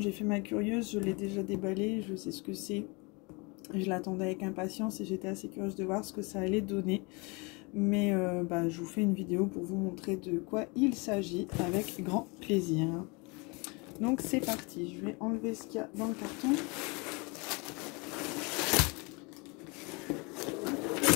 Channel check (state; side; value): quieter; right; 29.2 dB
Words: fait ma curieuse, je l'ai déjà déballé, je sais ce que c'est. Je l'attendais avec impatience et j'étais assez curieuse de voir ce que ça allait donner. Mais je vous fais une vidéo pour vous montrer de quoi il s'agit avec grand plaisir. Donc c'est parti, je vais enlever ce qu'il y a dans le carton.